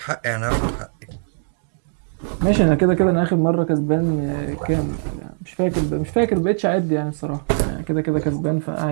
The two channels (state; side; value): silent; left; digital silence